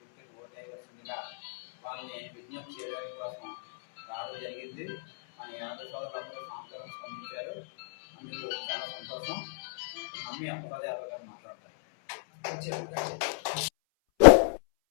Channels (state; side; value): silent; right; 57 dB below the other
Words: ఓటేయవలసిందిగా వాళ్ళని విజ్ఞప్తి చేయడానికి కోసం రావడం జరిగింది. మన యాదవ సోదరులందరూ స్పందించారు. అందుకు చాలా సంతోషం. నమ్మి అప్పలరాజు యాదవ్ గారు మాట్లాడతారు.